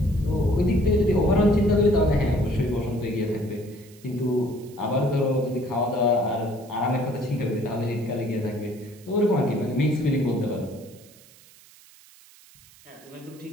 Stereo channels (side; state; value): right; noise; hiss, 25 dB below the sound